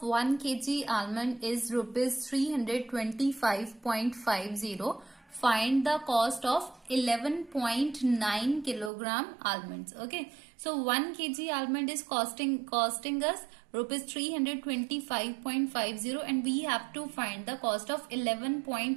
1 kg almond is rupees 325.50, find the cost of 11.9 kilogram almonds. Okay, so 1 kg almond is costing us rupees 325.50, and we have to find the cost of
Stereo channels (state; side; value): drops out; left; at 8.9 s